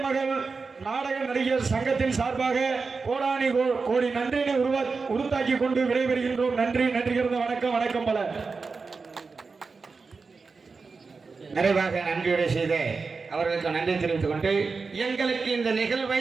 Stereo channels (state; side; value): quieter; left; 4.5 dB